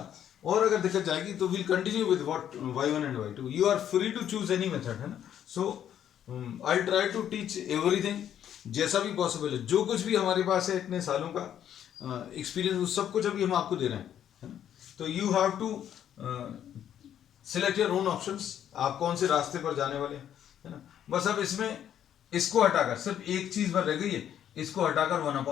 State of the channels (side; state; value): right; quieter; 10.1 dB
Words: और अगर दिक्कत जाएगी तो will continue with what y1 and y2। You are free to choose any method, है ना। So I try to teach everything जैसा भी पॉसिबल है। जो कुछ भी हमारे पास है इतने सालों का एक्सपीरियंस, वो सब कुछ अभी हम आपको दे रहे हैं, है ना। तो you have to select your own options, आप कौन से रास्ते पर जाने वाले हैं, है ना। बस अब इसमें इसको हटाकर सिर्फ एक चीज भर रह गई है, इसको हटाकर